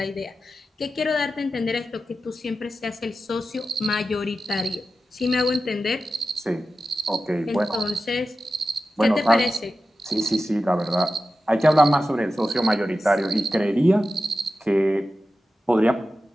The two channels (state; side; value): normal; both; correlation 0.93